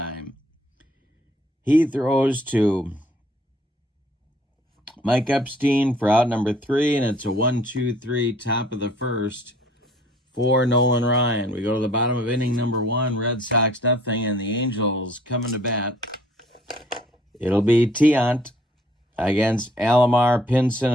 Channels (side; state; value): both; normal; correlation 0.58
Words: He throws to Mike Epstein for out number 3, and it's a 1-2-3 top of the first for Nolan Ryan. We go to the bottom of inning number 1, Red Sox nothing, and the Angels coming to bat. It'll be Tiant against Alomar, Pinson,